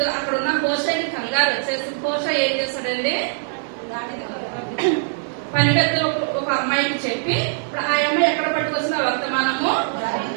అక్కడ ఉన్న హోషాని కంగారు వచ్చేసి హోషా ఏం చేస్తాడండి? పనిగత్తులో ఒక అమ్మాయికి చెప్పి ఇప్పుడు ఆ అమ్మాయి ఎక్కడ పట్టుకొచ్చిన వర్తమానము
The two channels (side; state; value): left; silent; 64 dB below the other